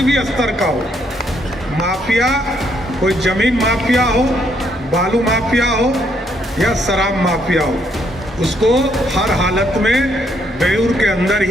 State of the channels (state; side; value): normal; both; correlation 0.72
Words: भी स्तर का हो, माफिया कोई जमीन माफिया हो, बालू माफिया हो या शराब माफिया हो, उसको हर हालत में बेऊर के अंदर